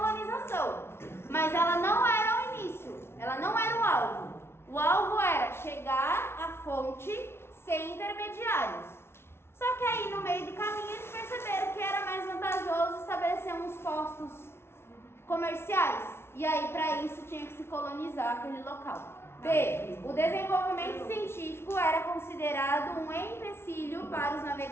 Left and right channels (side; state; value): right; late; 0.12 ms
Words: mas ela não era o início, ela não era o alvo. O alvo era chegar à fonte sem intermediários. Só que aí no meio do caminho eles perceberam que era mais vantajoso estabelecer uns postos comerciais. E aí para isso tinha que se colonizar aquele local. B. O desenvolvimento científico era considerado um empecilho para os